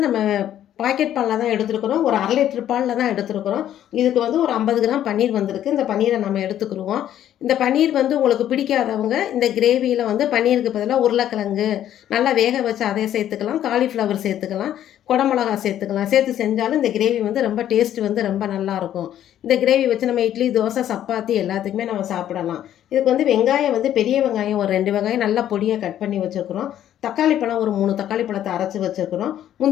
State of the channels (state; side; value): quieter; right; 11.3 dB